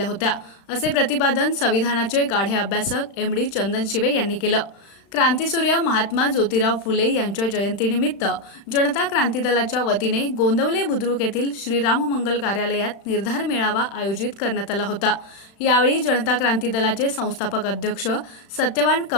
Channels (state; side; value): late; right; 36 ms